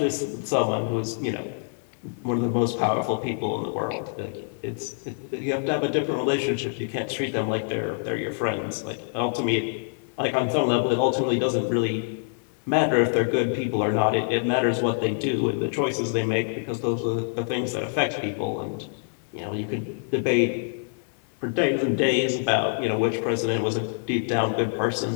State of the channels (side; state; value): right; silent; 61 dB below the other